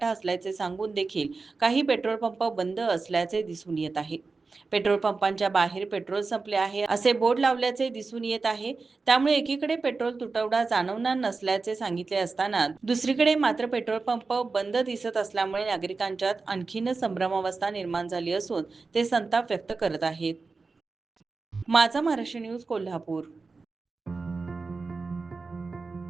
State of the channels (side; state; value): left; quieter; 4.1 dB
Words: असल्याचे सांगून देखील काही पेट्रोल पंप बंद असल्याचे दिसून येत आहे. पेट्रोल पंपांच्या बाहेर पेट्रोल संपले आहे असे बोर्ड लावल्याचे दिसून येत आहे. त्यामुळे एकीकडे पेट्रोल तुटवडा जाणवणार नसल्याचे सांगितले असताना दुसरीकडे मात्र पेट्रोल पंप बंद दिसत असल्यामुळे नागरिकांच्यात आणखीनच संभ्रमावस्था निर्माण झाली असून ते संताप व्यक्त करत आहेत. माझा महाराष्ट्र न्यूज कोल्हापूर.